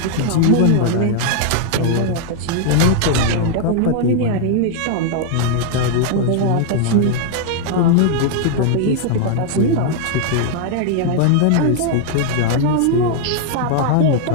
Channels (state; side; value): different; both; correlation 0.00